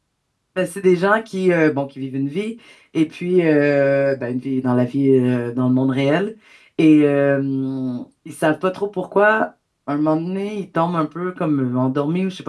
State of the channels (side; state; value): both; identical; correlation 1.00